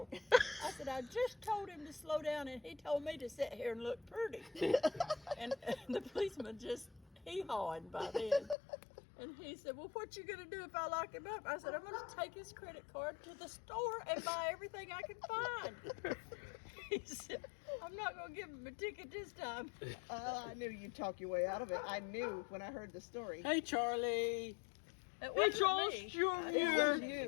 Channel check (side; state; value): right; drops out; at 8.6 s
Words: I said, I just told him to slow down, and he told me to sit here and look pretty. And the policeman just hee-hawing by then. And he said, well, what you going to do if I lock him up? I said, I'm going to take his credit card to the store and buy everything I can find. He said, I'm not going to give him a ticket this time. I knew you'd talk your way out of it. I knew when I heard the story. Hey, Charlie. It Hey, Charles me. Jr. It was